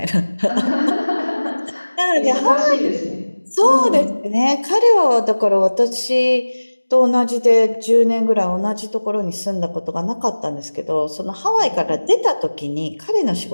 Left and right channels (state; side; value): inverted; both; correlation -1.00